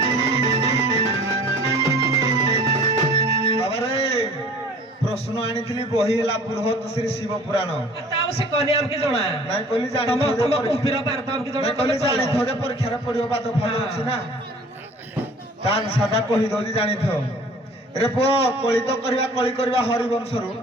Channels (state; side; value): normal; both; correlation 0.48